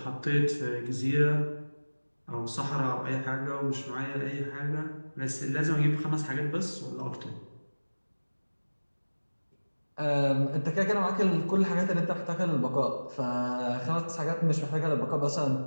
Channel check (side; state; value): both; inverted; correlation -1.00